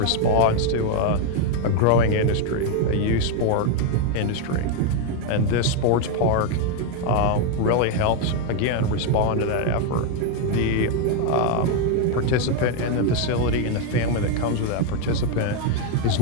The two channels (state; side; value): different; both; correlation 0.01